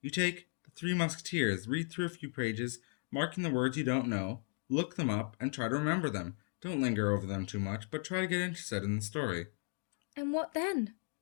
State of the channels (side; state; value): right; silent; 54 dB below the other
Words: You take the Three Musketeers, read through a few pages, marking the words you don't know, look them up, and try to remember them. Don't linger over them too much, but try to get interested in the story. And what then?